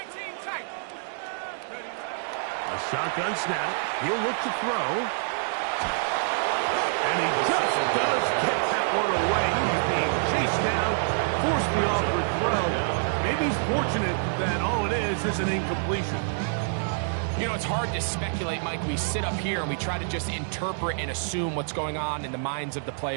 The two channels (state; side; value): silent; left; digital silence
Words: tight. A shotgun snap. He'll look to throw. And he just does get that one away. He's being chased down, forced the awkward throw. Maybe he's fortunate that all it is an incompletion. You know, it's hard to speculate, Mike. We sit up here and we try to just interpret and assume what's going on in the minds of the